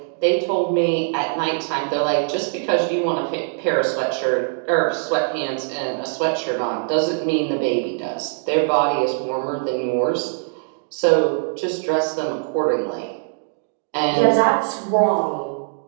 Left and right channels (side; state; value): left; silent; digital silence